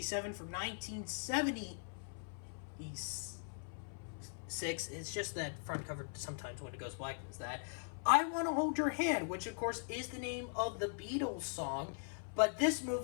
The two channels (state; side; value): silent; right; 51 dB below the other